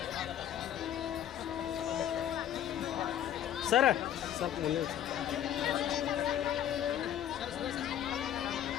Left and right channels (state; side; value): quieter; right; 10.6 dB